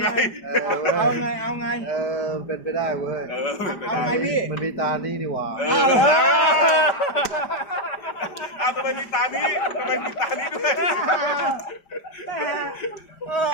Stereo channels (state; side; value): late; right; 5.0 ms